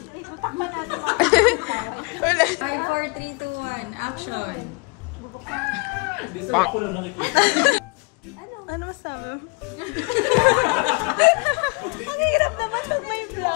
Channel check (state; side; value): quieter; right; 31.4 dB